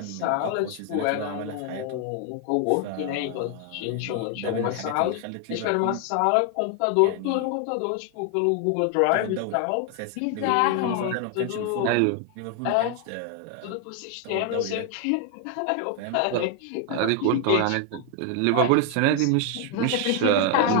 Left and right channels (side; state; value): both; different; correlation 0.00